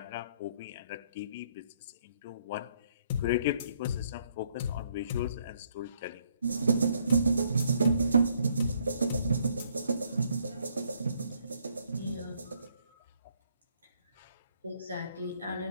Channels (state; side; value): inverted; both; correlation -0.69